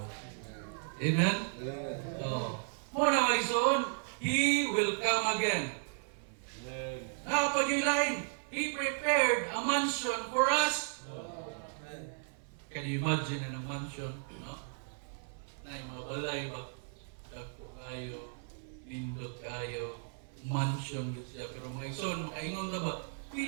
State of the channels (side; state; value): left; silent; 54 dB below the other